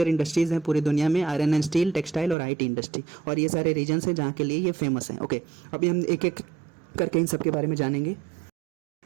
इंडस्ट्रीज़ हैं पूरी दुनिया में, आयरन एंड स्टील, टेक्सटाइल और IT इंडस्ट्री, और ये सारे रीजन्स हैं जहाँ के लिए ये फेमस हैं। ओके, अभी हम एक एक करके इन सब के बारे में जानेंगे।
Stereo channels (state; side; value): drops out; left; at 2.4 s